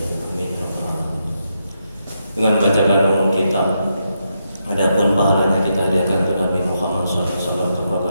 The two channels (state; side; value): inverted; both; correlation -0.82